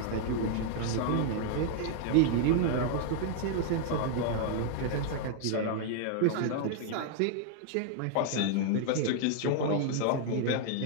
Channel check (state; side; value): different; both; correlation 0.00